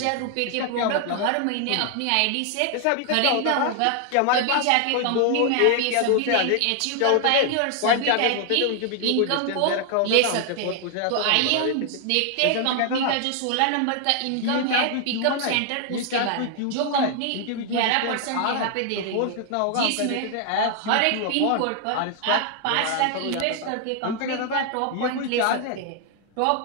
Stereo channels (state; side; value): different; both; correlation 0.00